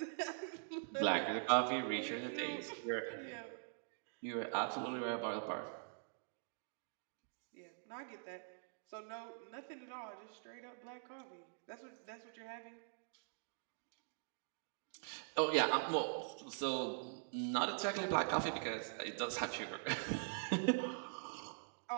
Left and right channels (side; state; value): left; silent; digital silence